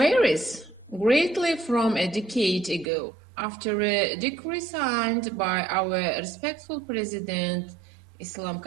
greatly from a decade ago. After a decree signed by our respectful President Islam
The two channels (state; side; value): drops out; left; at 2.9 s